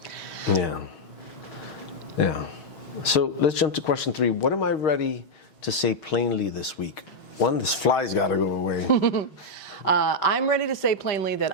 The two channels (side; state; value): right; late; 6.2 ms